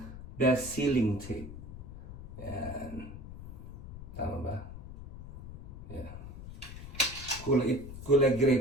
sealing tape. Yan. Tama ba? Yeah. Kulay gray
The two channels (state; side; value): noise; left; rumble, 12 dB below the sound